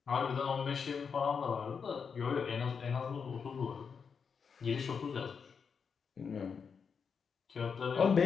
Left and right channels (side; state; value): right; quieter; 6.1 dB